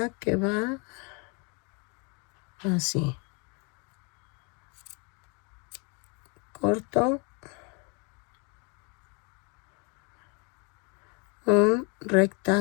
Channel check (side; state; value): right; quieter; 33.7 dB